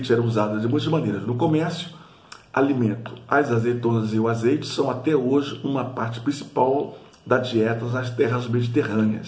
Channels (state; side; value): identical; both; correlation 1.00